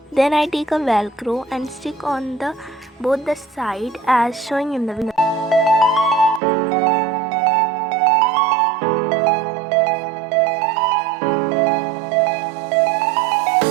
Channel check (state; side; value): drops out; left; at 6.4 s